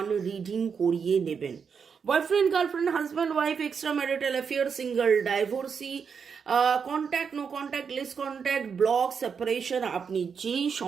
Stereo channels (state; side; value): quieter; left; 6.3 dB